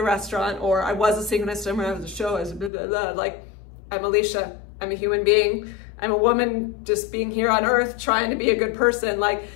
restaurant, or I was a synchronized swimmer, I was a show, I was blah, blah, blah. Like, I'm Alicia. I'm a human being. I'm a woman just being here on earth, trying to be a good person. Like,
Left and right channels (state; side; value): drops out; right; at 2.7 s